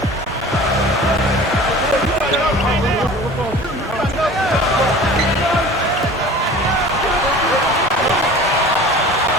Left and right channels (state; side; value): normal; both; correlation 0.41